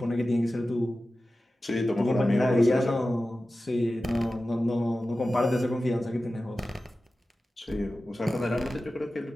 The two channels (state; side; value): normal; both; correlation 0.94